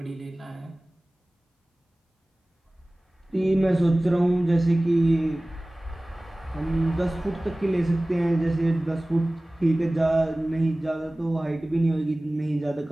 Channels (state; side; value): normal; both; correlation 0.98